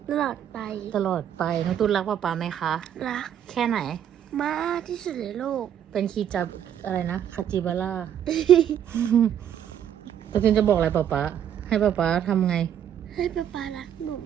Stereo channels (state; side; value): quieter; left; 9.7 dB